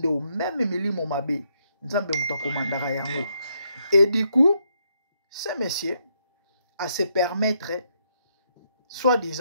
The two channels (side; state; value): both; inverted; correlation -0.76